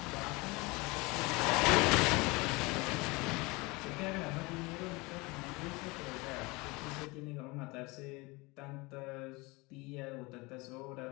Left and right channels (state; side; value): quieter; right; 24.8 dB